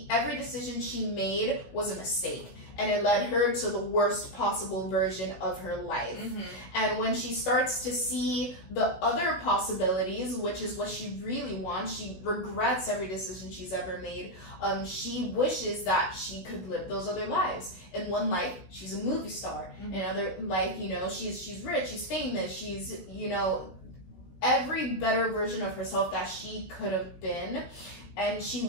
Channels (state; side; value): late; right; 16 ms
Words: every decision she made was a mistake. And it led her to the worst possible version of her life. And when she starts to see the other possibilities, which is what she really wants, she regrets every decision she's ever made. She wishes that she could live those other lives. In one life, she's a movie star. In another life, she's rich, she's famous, she's, every better version of herself that she could have been. And